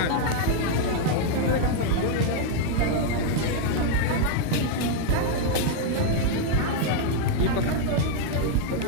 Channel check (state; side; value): different; both; correlation 0.00